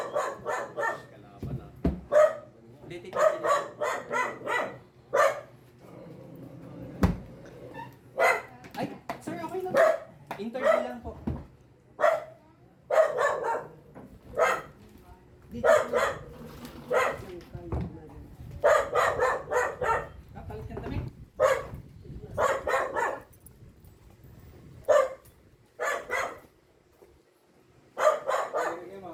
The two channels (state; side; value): identical; both; correlation 1.00